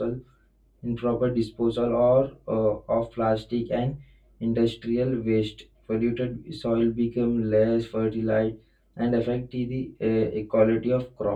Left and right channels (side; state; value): both; identical; correlation 1.00